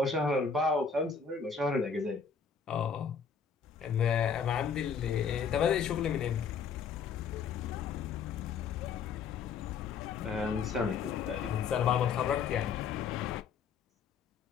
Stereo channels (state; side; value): quieter; right; 6.1 dB